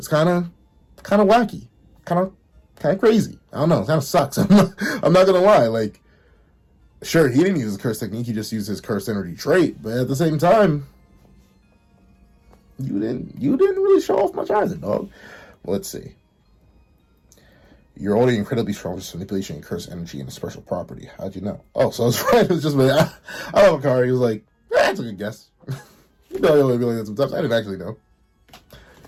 kind of wacky. Kind of crazy. I don't know. It kind of sucks. I'm not going to lie. Like, sure, he didn't use his curse technique. He just used his cursed energy trait. But at the same time, you didn't really show off much either, dog. Well, let's see. You're already incredibly strong with manipulation and curse energy and a special property. How'd you know? Oh, so I was right. It was just, I love Hakari. He was like, that's a good guess. You know, I only be like that sometimes. I didn't actually know. I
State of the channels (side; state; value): both; identical; correlation 1.00